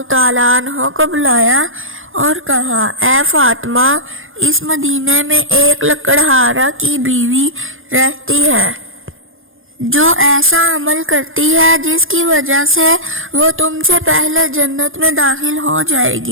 تعالیٰ عنہ کو بلایا اور کہا، اے فاطمہ، اس مدینے میں ایک لکڑہارا کی بیوی رہتی ہے جو ایسا عمل کرتی ہے جس کی وجہ سے وہ تم سے پہلے جنت میں داخل ہو جائے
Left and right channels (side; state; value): left; late; 0.59 ms